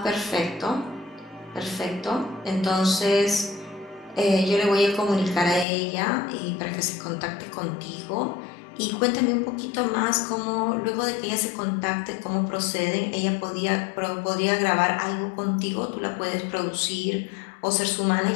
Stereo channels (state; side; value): drops out; right; at 5.7 s